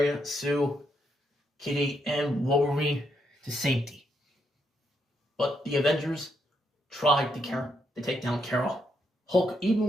Sue, Kitty, and Wolverine to safety. But the Avengers tried to take down Carol. Hulk, even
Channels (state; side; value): normal; both; correlation 0.78